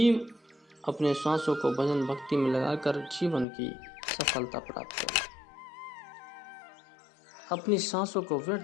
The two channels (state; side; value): drops out; right; at 3.5 s